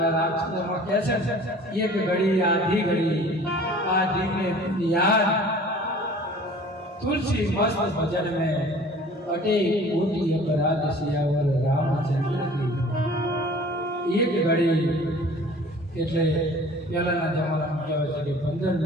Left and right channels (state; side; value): normal; both; correlation 0.47